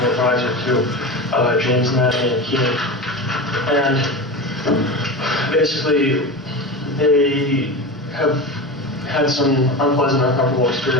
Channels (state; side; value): normal; both; correlation 0.26